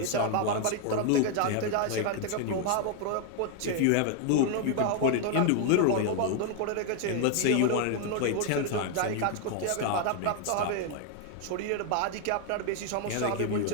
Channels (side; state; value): both; different; correlation 0.00